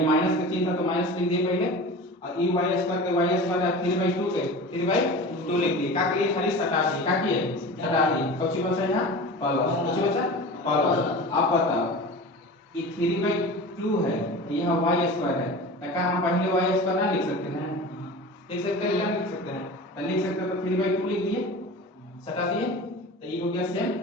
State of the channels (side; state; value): both; normal; correlation 0.34